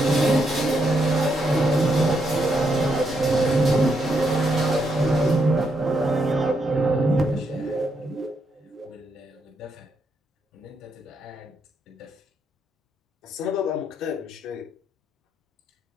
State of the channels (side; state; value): both; normal; correlation 0.78